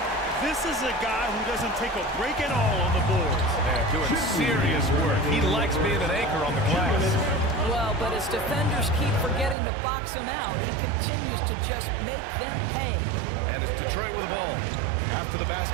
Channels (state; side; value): drops out; left; at 9.6 s